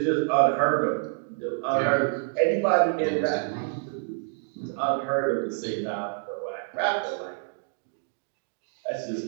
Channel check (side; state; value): left; silent; digital silence